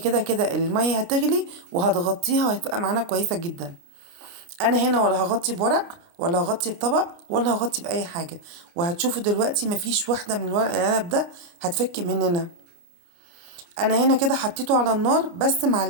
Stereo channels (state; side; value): late; left; 29 ms